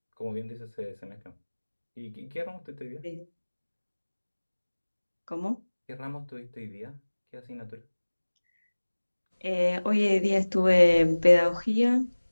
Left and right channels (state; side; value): inverted; both; correlation -1.00